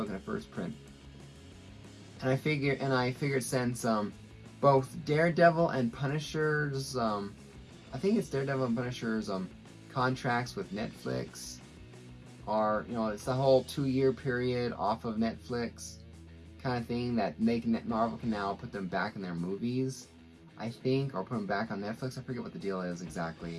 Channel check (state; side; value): identical; both; correlation 1.00